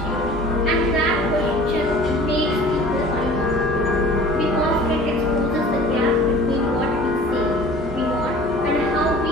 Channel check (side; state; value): both; normal; correlation 0.45